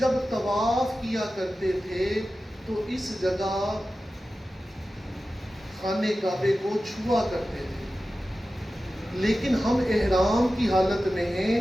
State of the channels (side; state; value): both; normal; correlation 0.94